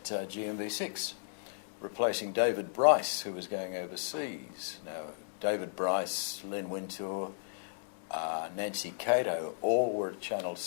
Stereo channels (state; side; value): silent; right; 55 dB below the other